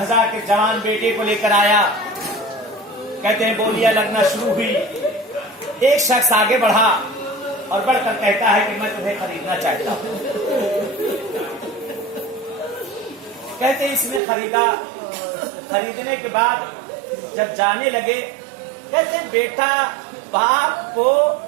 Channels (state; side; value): drops out; left; at 14.2 s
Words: کے جوان بیٹے کو لے کر آیا. کہتے ہیں بولیاں لگنا شروع ہوئی. ایک شخص آگے بڑھا اور بڑھ کر کہتا ہے کہ میں تمہیں خریدنا چاہتا ہوں. کہتے اس نے خریدا. خریدنے کے بعد جب جانے لگے, کہتے بیٹا باپ کو